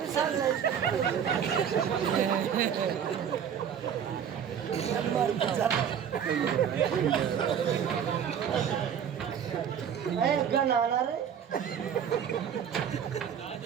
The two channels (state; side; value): quieter; left; 8.3 dB